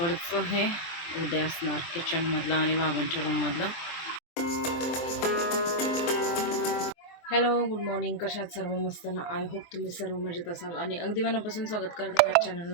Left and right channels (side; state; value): right; late; 23 ms